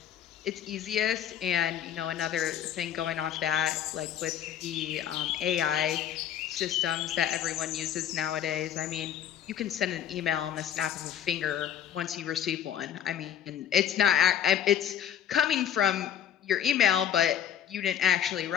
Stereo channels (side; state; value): right; quieter; 9.7 dB